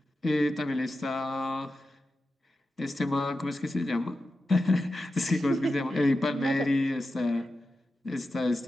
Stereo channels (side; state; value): both; normal; correlation 0.91